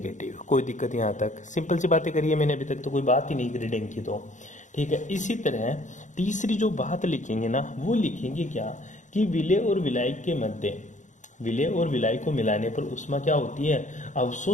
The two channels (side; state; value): right; late; 0.36 ms